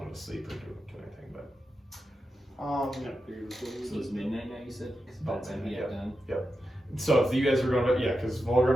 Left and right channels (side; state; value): both; normal; correlation 0.89